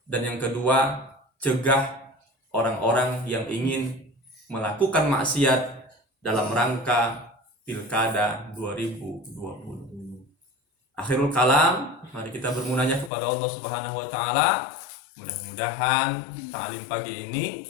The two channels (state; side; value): drops out; right; at 13.1 s